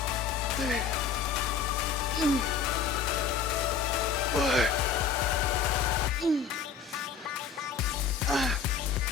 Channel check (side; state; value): right; quieter; 6.2 dB